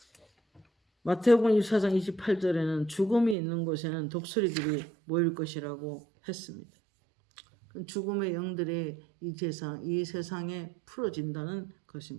마태복음 24장 28절에는 죽음이 있는 곳에는 독수리들이 모일 것이라고 했습니다. 죽음의 영들이 이 세상에 풀어진다는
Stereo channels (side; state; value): left; drops out; at 3.4 s